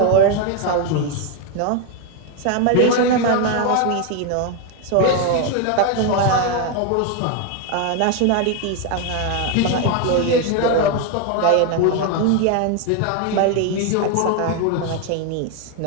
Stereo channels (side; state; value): both; different; correlation 0.01